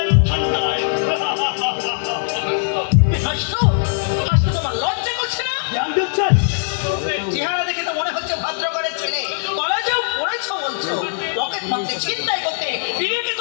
তোমার লজ্জা করছে না? চেহারা দেখে তো মনে হচ্ছে ভদ্রঘরের ছেলে, কলেজেও পড়েছো বলছো, পকেট মারতে চিন্তাই করতে বিবেকে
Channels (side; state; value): right; silent; digital silence